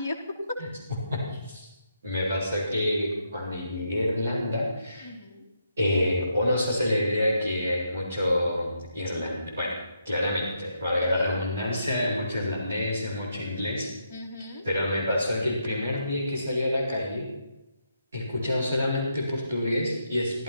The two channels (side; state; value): both; inverted; correlation -0.79